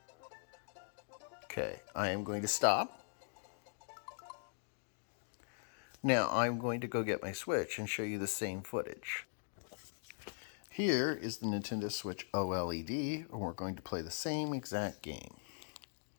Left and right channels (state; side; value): silent; right; digital silence